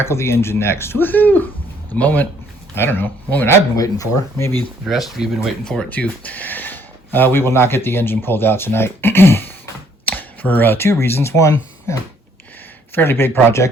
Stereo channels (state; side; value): normal; both; correlation 0.64